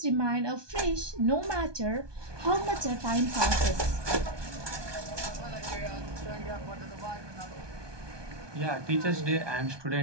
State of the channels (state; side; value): late; left; 1.2 ms